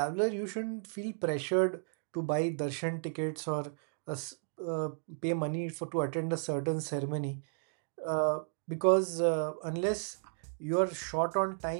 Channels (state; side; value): silent; left; digital silence